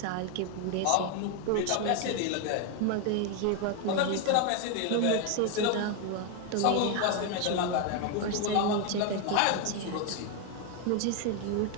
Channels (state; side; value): different; both; correlation 0.01